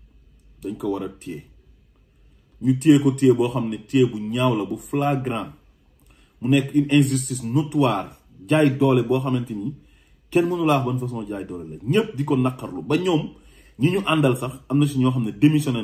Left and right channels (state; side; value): identical; both; correlation 1.00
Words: dañ ko war a téye ñu téye ko téye boo xam ne téye bu ñaaw la bu flagrant mu nekk une injustice notoire jaay doole boo xamante ni kenn mënu laa wax ban façon jaay doole la ñëpp di ko naqarlu ba ñoom ñi ñu àndal sax am na si ñoo xam ne démissionné